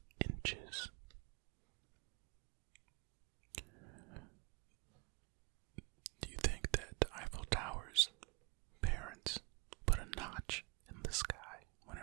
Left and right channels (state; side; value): quieter; left; 27.8 dB